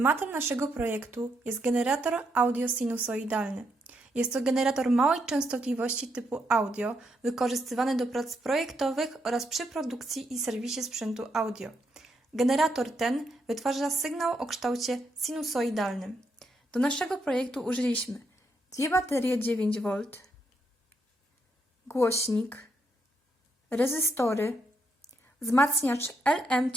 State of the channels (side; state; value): both; normal; correlation 0.78